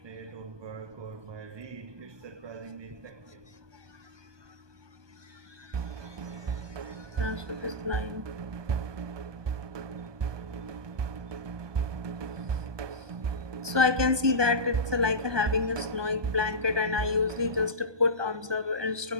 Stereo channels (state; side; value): late; left; 1.2 ms